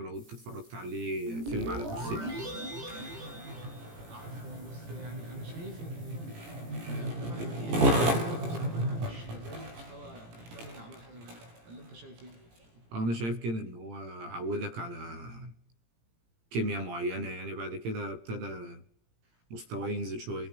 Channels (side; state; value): left; late; 18 ms